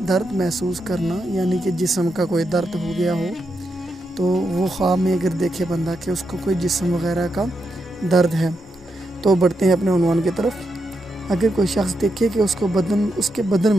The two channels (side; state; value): both; normal; correlation 0.84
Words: दर्द महसूस करना, यानी कि जिस्म का कोई दर्द हो गया हो तो वो ख्वाब में अगर देखे बंदा कि उसको कोई जिस्म वगैरह का दर्द है। तो बढ़ते हैं अपने उन्वान की तरफ। अगर कोई शख्स देखे कि उसके बदन